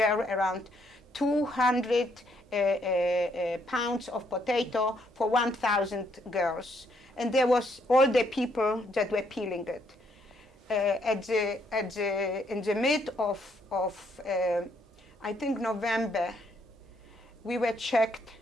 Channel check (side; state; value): both; normal; correlation 0.71